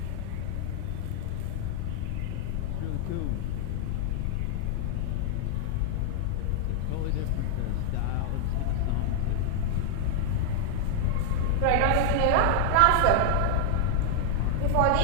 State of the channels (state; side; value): different; both; correlation -0.01